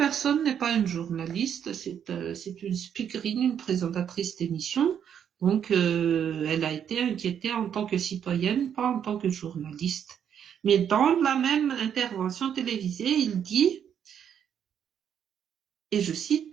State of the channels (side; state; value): left; quieter; 8.7 dB